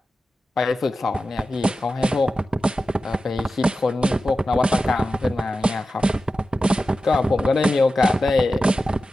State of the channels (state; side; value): normal; both; correlation 0.92